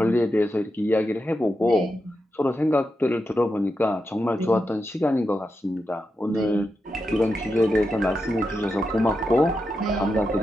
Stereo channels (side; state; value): both; normal; correlation 0.88